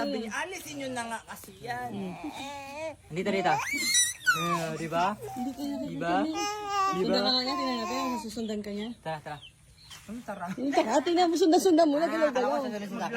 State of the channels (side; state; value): both; identical; correlation 1.00